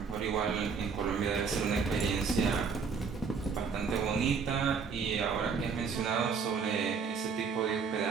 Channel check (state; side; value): quieter; left; 5.6 dB